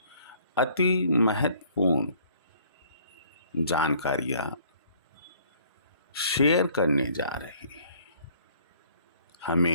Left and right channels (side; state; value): both; inverted; correlation -0.59